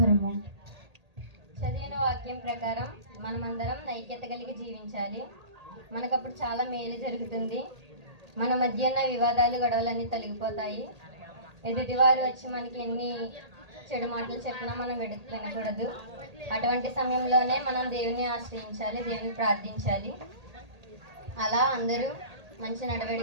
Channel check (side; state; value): left; late; 1.8 ms